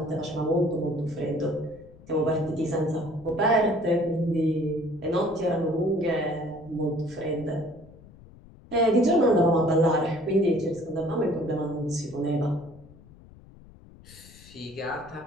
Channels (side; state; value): left; noise; rumble, 22 dB below the sound